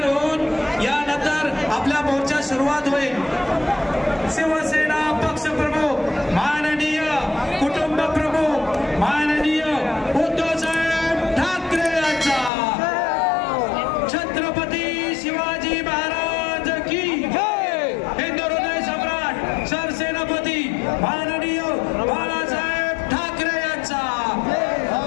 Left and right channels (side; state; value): right; drops out; at 12.5 s